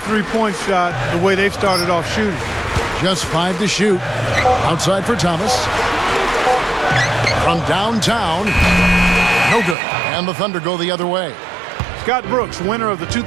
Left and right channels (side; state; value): left; drops out; at 9.8 s